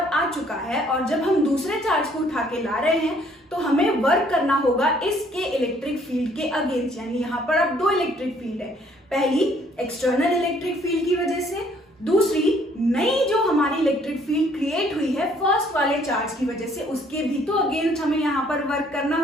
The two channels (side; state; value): both; normal; correlation 0.62